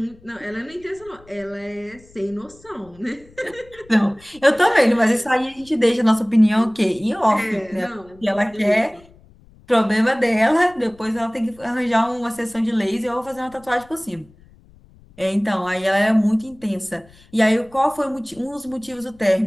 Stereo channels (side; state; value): left; noise; rumble, 26 dB below the sound